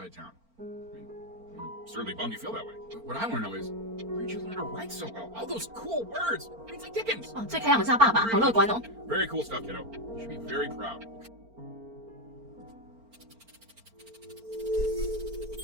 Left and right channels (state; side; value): late; left; 4.4 ms